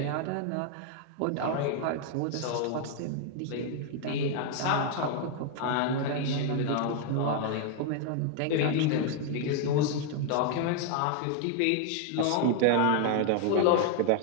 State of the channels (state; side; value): different; both; correlation 0.00